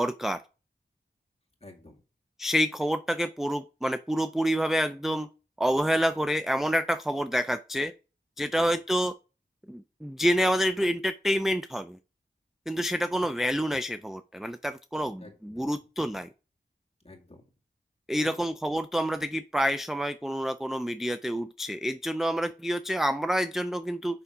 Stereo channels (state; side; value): normal; both; correlation 0.92